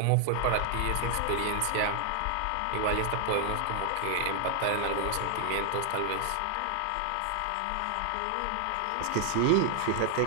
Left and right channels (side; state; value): both; different; correlation 0.00